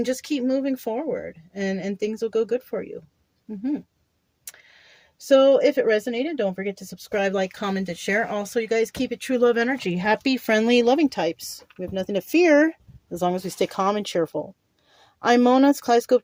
just keep moving forward, and things will go good for you. Mm-hmm. So if it resonated, don't forget to subscribe, like, comment, and share. Also, you guys, keep it true love energy. Happy, friendly, loving types. We have nothing to fear as long as we stay calm and cheerful. I'm Mona. It's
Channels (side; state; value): both; identical; correlation 1.00